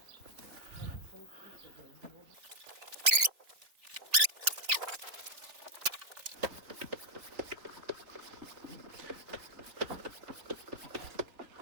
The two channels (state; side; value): late; left; 3.4 ms